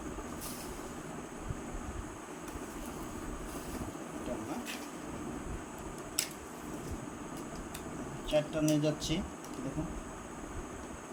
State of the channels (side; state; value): both; identical; correlation 1.00